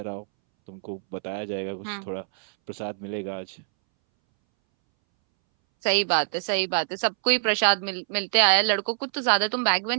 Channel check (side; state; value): left; silent; 62 dB below the other